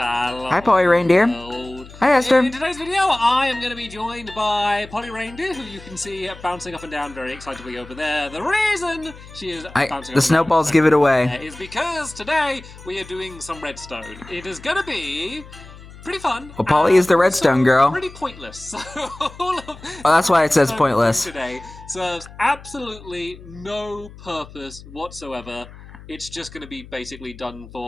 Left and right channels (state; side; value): noise; left; hum, 18 dB below the sound